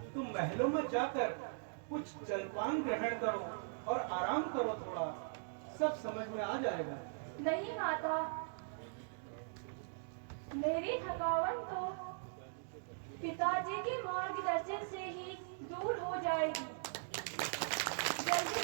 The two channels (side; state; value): left; silent; digital silence